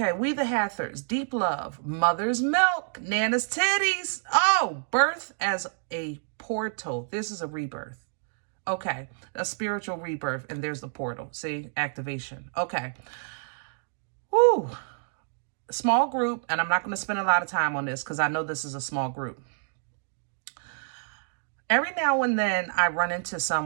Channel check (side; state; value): left; silent; digital silence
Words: we the Hathors, deep love, mother's milk, Nana's titties. Oh, birth as a portal. This is a rebirth. Okay, a spiritual rebirth, and there's the portal. See, activation. Okay. Whew. Small group, and I'm not going to spend a lot of time on this because I know this is a small group. Every now and then I run into